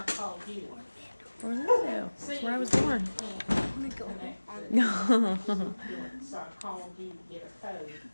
Orlando. That's where I was born. No.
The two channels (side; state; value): both; inverted; correlation -1.00